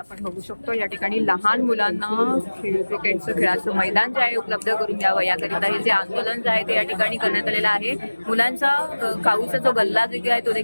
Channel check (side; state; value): both; inverted; correlation -1.00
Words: बघू शकतो या ठिकाणी लहान मुलांना क्रिकेटचं खेळाचं मैदान जे आहे उपलब्ध करून द्यावं याकरिता हे जे आंदोलन जे आहे ते या ठिकाणी करण्यात आलेलं आहे. मुलांचा काऊचा जो गल्ला देखील आहे तो